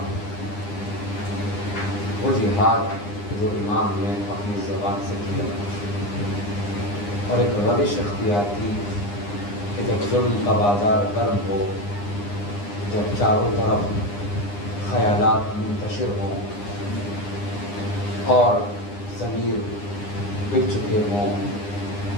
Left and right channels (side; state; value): right; late; 9.8 ms